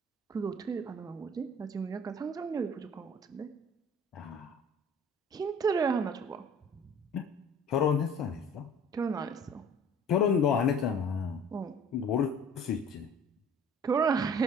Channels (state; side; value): normal; both; correlation 0.48